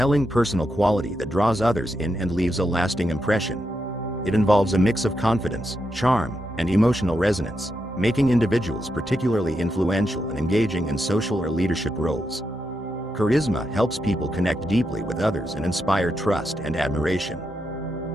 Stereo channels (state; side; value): normal; both; correlation 0.84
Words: personal quality that draws others in and leaves a lasting impression. It involves a mix of confidence, charm, and emotional resonance, making individuals particularly influential and engaging in social or leadership roles. Charisma helps people connect deeply with others and inspire trust and admiration.